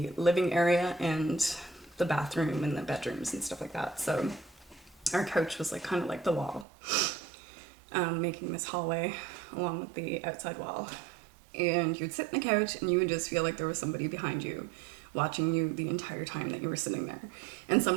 living area and the bathroom and the bedrooms and stuff like that. So our couch was like kind of like the wall, making this hallway along with the outside wall. And you'd sit in the couch and you would just feel like there was somebody behind you watching you the entire time that you were sitting there. And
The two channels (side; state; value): left; drops out; at 6.7 s